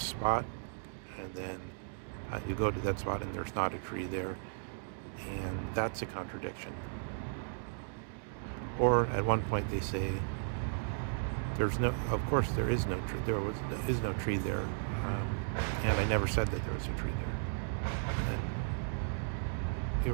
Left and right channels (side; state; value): left; silent; digital silence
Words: and then you go to that spot and there's not a tree there, and that's a contradiction. Or at one point they say of course there is no tree, is no tree there, and I never said that there was a tree there. And you